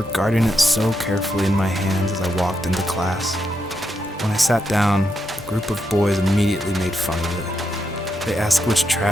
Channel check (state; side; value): normal; both; correlation 0.83